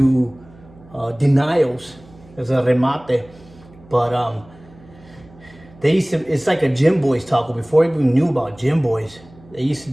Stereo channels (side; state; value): right; noise; hum, 24 dB below the sound